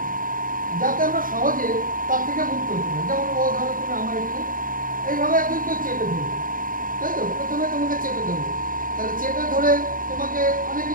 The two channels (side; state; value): left; late; 0.40 ms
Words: যাতে আমরা সহজে তার থেকে মুক্ত হতে পারি। যেমন ও ধরো তুমি আমার একটু এইভাবে একজন কেউ চেপে ধরবে, তাই তো? প্রথমে তোমাকে চেপে ধরবে, তাহলে চেপে ধরে তোমাকে অনেক